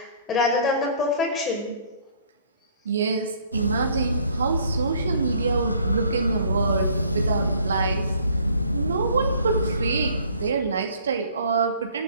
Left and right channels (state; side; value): inverted; both; correlation -0.58